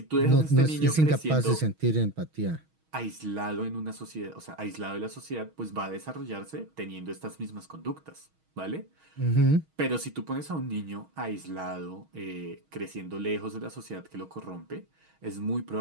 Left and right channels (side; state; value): left; late; 6.3 ms